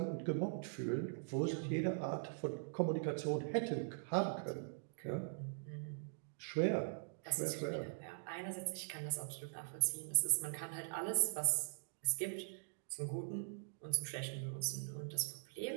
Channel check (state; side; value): silent; left; digital silence